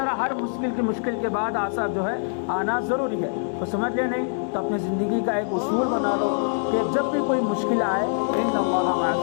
ہر مشکل کے بعد آسان جو ہے آنا ضروری ہے۔ تو سمجھ لیا نہیں تو اپنی زندگی کا ایک اصول بنا لو کہ جب بھی کوئی مشکل آئے ان اللہ مع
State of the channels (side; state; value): right; silent; digital silence